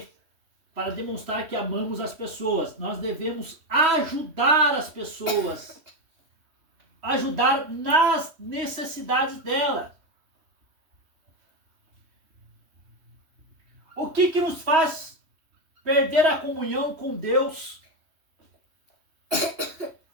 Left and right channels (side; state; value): left; late; 3.1 ms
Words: para demonstrar que amamos as pessoas, nós devemos ajudar as pessoas. Ajudar nas necessidades delas. O que nos faz perder a comunhão com Deus